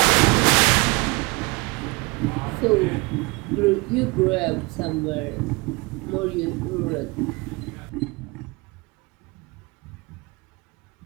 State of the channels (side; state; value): left; quieter; 26.3 dB